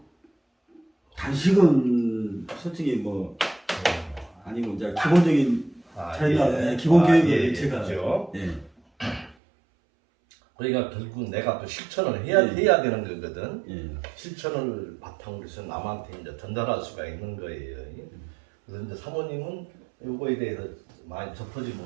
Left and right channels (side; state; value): left; drops out; at 9.3 s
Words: 단식은 솔직히 뭐 아니면 이제 기본적인 자기가 기본 교육을 제가 그렇죠. 예. 그러니까 결국 내가 또 실천을 해야 되는 거거든. 예. 실천을 바탕으로 해서 남한테 이제 전달할 수가 있는 거예요. 그래서 이제 사모님은 요거에 대해서 많이 접하지